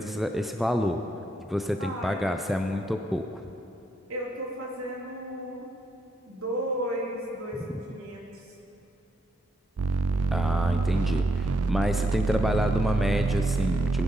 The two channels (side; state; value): both; normal; correlation 0.78